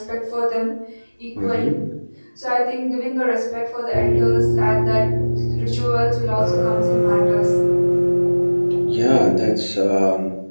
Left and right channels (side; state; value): both; inverted; correlation -1.00